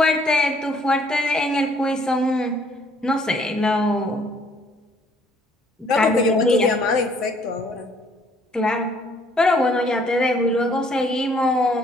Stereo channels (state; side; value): normal; both; correlation 0.63